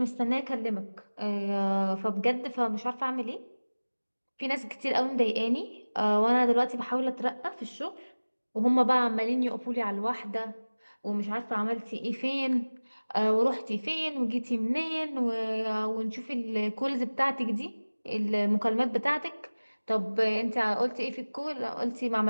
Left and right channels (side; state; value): both; inverted; correlation -1.00